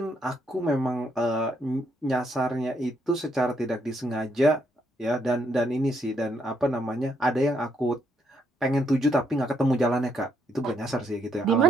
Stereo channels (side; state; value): both; normal; correlation 0.74